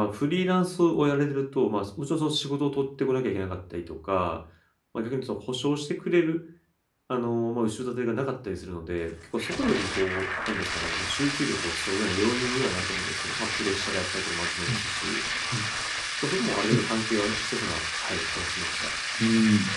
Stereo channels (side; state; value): both; identical; correlation 1.00